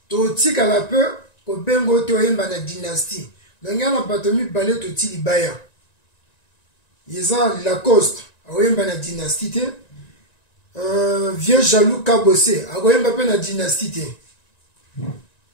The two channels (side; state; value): right; late; 1.9 ms